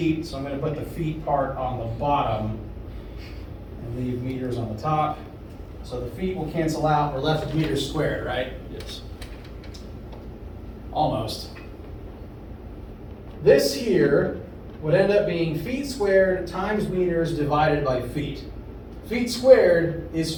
so I'm going to put the feet part on the bottom and leave meters on the top. So the feet will cancel out. We're left with meters squared, right? Yes. Almost. This here would end up being feet squared times meters divided by feet. Feet squared is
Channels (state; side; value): identical; both; correlation 1.00